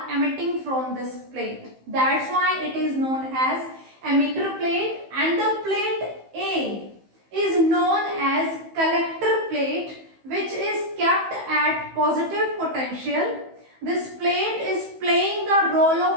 emitting from this plate. That's why it is known as emitter plate. And the plate A is known as collector plate, which is kept at positive potential. This plate is playing the role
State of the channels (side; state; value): left; late; 15 ms